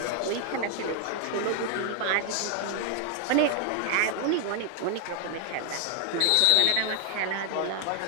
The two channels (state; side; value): different; both; correlation 0.00